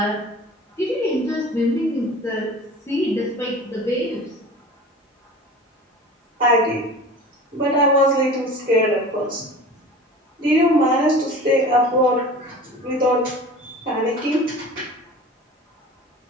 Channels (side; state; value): both; normal; correlation 0.39